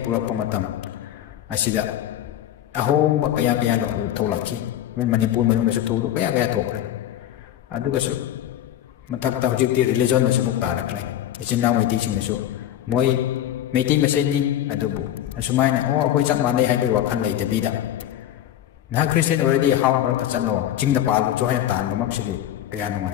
purak pamatam asida ahom kaya no tholaki men Manipur manung su tholu kaya thokre aduga su mathakta hojikti religion na samuk tarakle ichinnaw mai teaching su moi meiti meseni adubu asumaina akoi chak mane haibai wakhan lei debida na Christian already how mark chano jingda palu cho haya tan bamak sigi kaya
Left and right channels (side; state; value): right; quieter; 11.8 dB